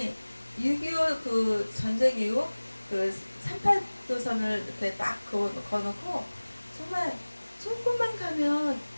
6.25 그 전쟁 이후 그 38도선을 이렇게 딱 거놓고 정말 조금만 가면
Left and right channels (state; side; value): inverted; both; correlation -1.00